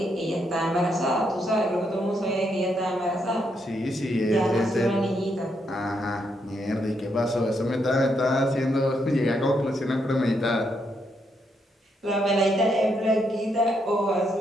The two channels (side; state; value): both; normal; correlation 0.78